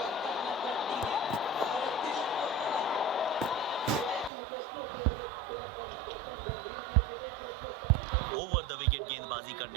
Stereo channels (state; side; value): drops out; left; at 4.3 s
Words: ओवर द विकेट गेंदबाजी